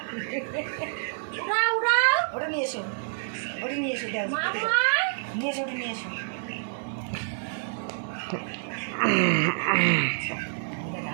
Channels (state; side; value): silent; left; 59 dB below the other